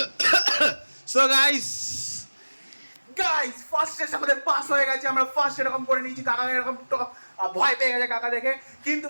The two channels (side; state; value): both; inverted; correlation -1.00